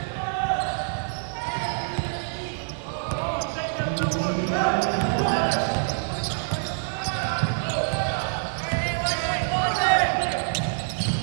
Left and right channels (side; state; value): left; silent; digital silence